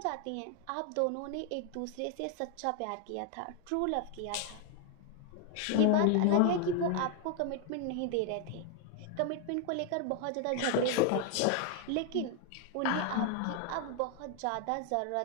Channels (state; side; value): different; both; correlation 0.01